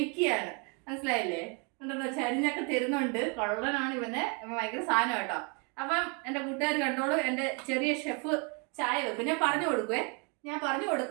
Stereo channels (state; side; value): quieter; left; 34.2 dB